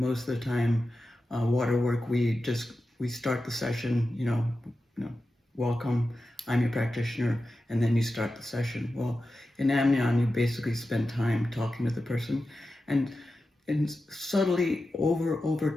of the time, water work, we start the session, welcome, I'm your practitioner, and then you start the session. Well, in Amnion, you basically spend time talking to the person, and subtly over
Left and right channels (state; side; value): normal; both; correlation 0.92